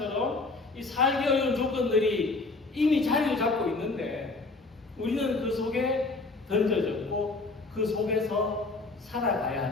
이 살기 어려운 조건들이 이미 자리를 잡고 있는데 우리는 그 속에 던져졌고 그 속에서 살아가야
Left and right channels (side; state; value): right; quieter; 3.5 dB